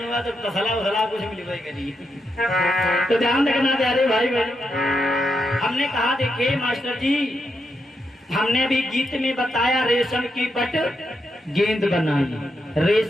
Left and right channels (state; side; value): normal; both; correlation 0.83